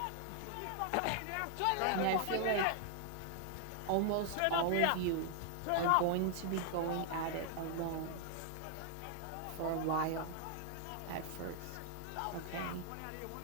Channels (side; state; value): both; different; correlation 0.00